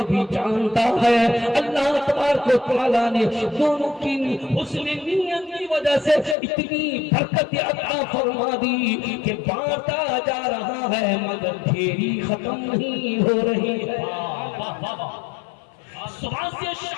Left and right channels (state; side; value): drops out; right; at 6.4 s